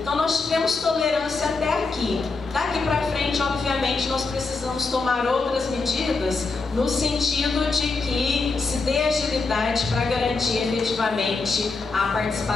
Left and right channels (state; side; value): quieter; right; 4.0 dB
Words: nós tivemos tolerância até aqui. Daqui para frente, obviamente, nós precisamos tomar outras medidas no sentido de que se dê agilidade para garantir efetivamente a